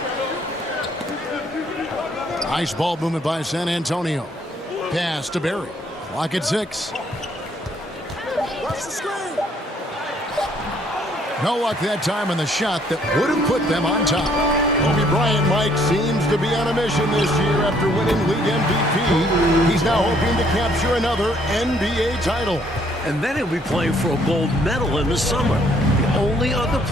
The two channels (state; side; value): normal; both; correlation 0.65